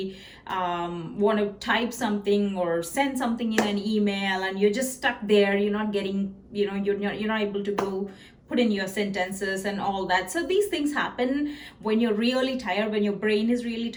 want to type something or send something in an email and you're just stuck there. You're not getting, you're not able to go put in your sentences and all that. So these things happen when you're really tired, when your brain is really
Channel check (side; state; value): both; identical; correlation 1.00